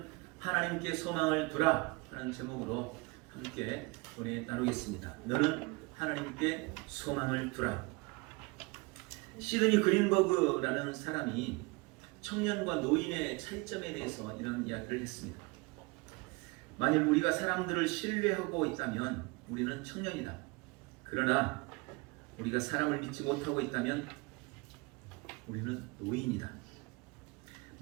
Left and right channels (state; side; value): quieter; left; 26.6 dB